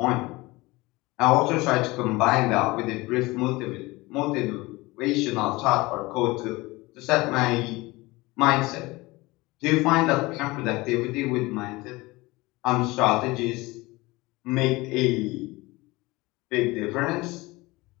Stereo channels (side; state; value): right; quieter; 21.9 dB